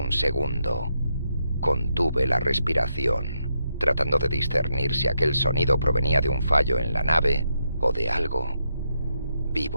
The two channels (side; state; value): both; inverted; correlation -0.81